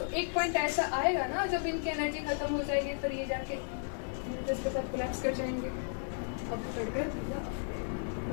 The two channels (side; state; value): right; silent; digital silence